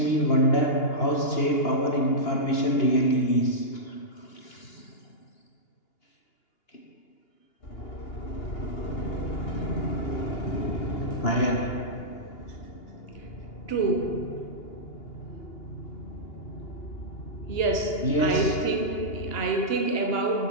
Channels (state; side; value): late; right; 2.8 ms